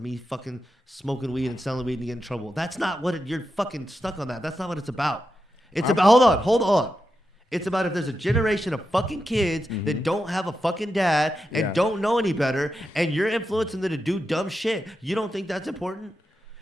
fucking smoking weed and selling weed and getting in trouble. That's not what you're fucking stuck on that. That's not what it's about. It's about, hold on. It's about if there's a generation of fucking kids that don't have a fucking dad and Yeah. don't know any better and you're influencing them to do dumb shit. You don't think that's important?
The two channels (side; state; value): both; normal; correlation 0.88